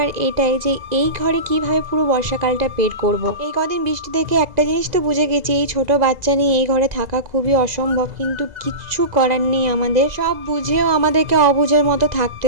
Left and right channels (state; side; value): late; left; 2.0 ms